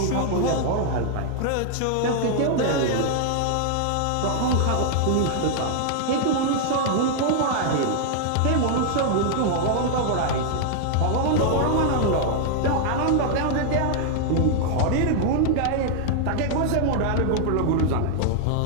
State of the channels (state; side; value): different; both; correlation -0.01